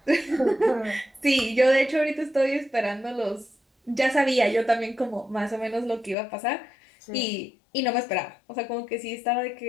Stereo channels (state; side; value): drops out; right; at 6.2 s